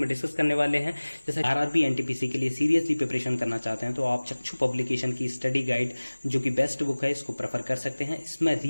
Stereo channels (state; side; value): inverted; both; correlation -1.00